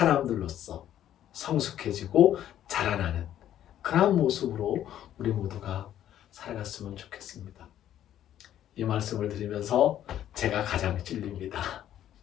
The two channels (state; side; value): quieter; right; 11.4 dB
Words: 성숙해지고 자라나는 그런 모습으로 우리 모두가 살아갔으면 좋겠습니다. 이 말씀을 드리면서 제가 가장 찔립니다.